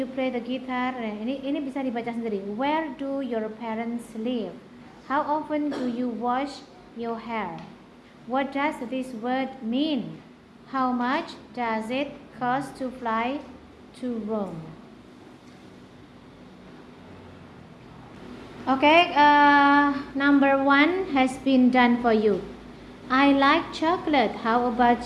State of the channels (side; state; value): both; identical; correlation 1.00